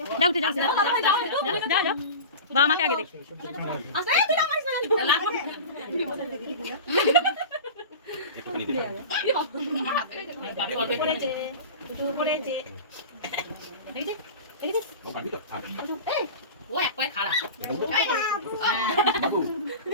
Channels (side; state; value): both; inverted; correlation -0.32